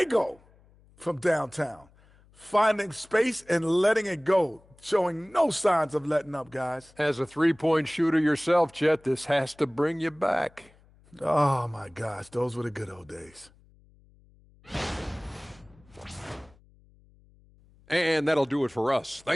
from downtown, finding space and letting it go, showing no signs of letting up, guys. As a three-point shooter yourself, Chet, this has to bring you back. Oh, my gosh, those were the good old days. And that'll do it for us.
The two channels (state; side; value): noise; left; hum, 29 dB below the sound